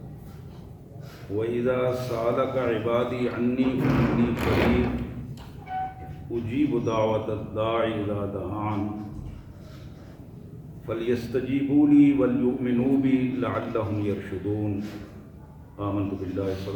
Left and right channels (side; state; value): both; identical; correlation 1.00